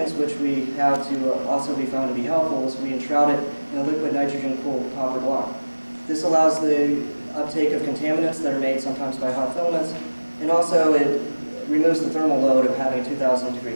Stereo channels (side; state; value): both; inverted; correlation -1.00